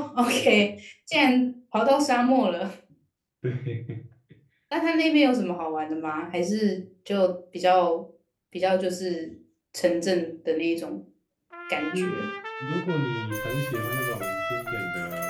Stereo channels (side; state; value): both; identical; correlation 1.00